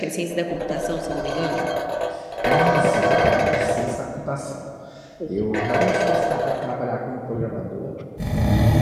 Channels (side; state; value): both; identical; correlation 1.00